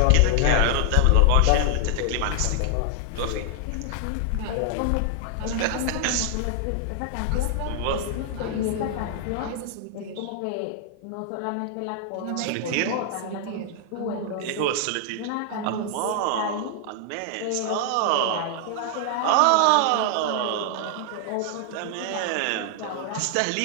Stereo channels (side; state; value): both; different; correlation 0.00